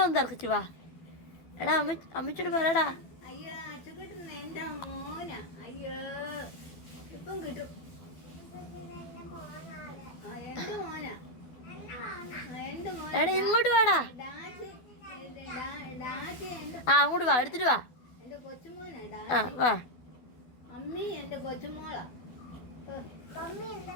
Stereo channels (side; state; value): right; late; 12 ms